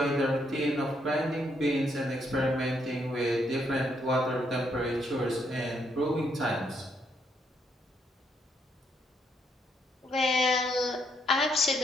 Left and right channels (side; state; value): both; normal; correlation 0.74